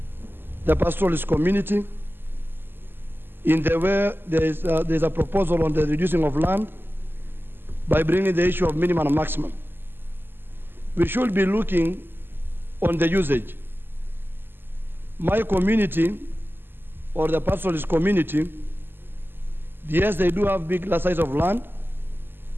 the pastoralist community in the way there's a proposal on the reducing of land by bringing the issue of minimum and maximum. We should be looking on the usage. My community, or the pastoralist community, yes, they do have big size of land,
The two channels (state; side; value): late; left; 0.098 ms